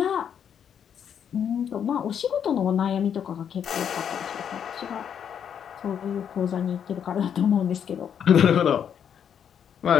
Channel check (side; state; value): right; quieter; 8.3 dB